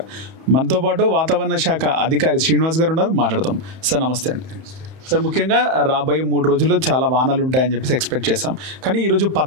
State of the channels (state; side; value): late; left; 31 ms